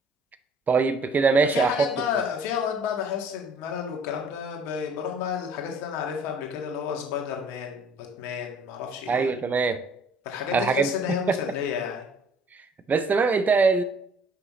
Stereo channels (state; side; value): normal; both; correlation 0.56